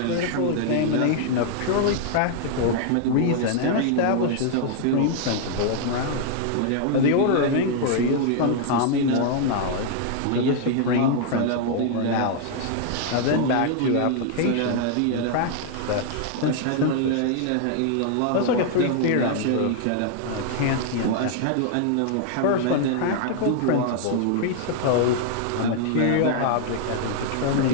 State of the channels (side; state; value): both; different; correlation 0.00